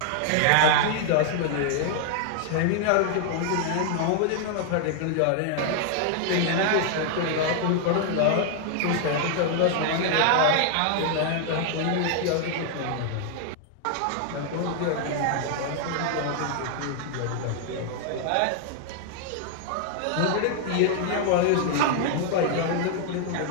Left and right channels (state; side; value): different; both; correlation 0.00